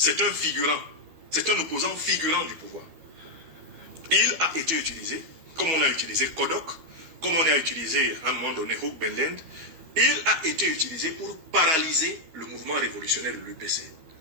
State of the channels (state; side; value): late; left; 12 ms